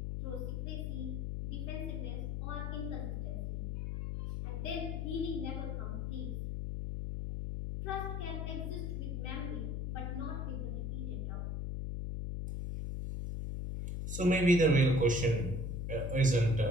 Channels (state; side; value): noise; left; hum, 2 dB below the sound